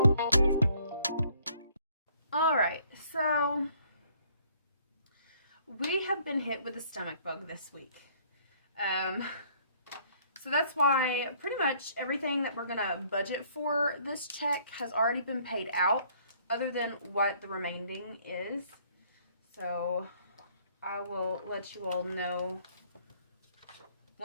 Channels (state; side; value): inverted; both; correlation -0.62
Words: Alright, so we have been hit with a stomach bug this week. So that's why pretty much everything that we're going to budget for this check has already been paid out, other than what the remaining is. So I will let you all know